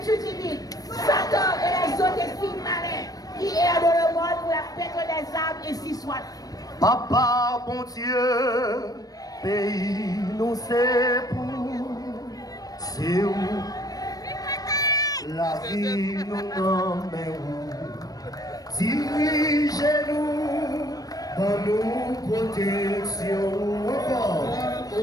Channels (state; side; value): late; right; 0.18 ms